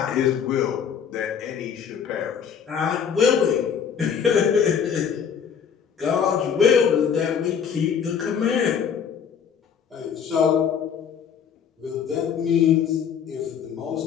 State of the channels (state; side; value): quieter; right; 7.4 dB